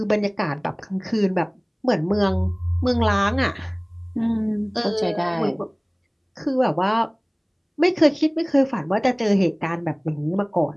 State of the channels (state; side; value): identical; both; correlation 1.00